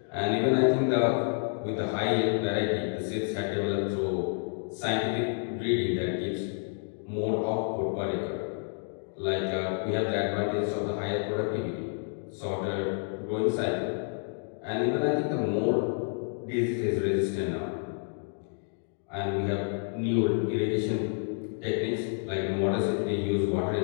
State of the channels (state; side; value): silent; right; 58 dB below the other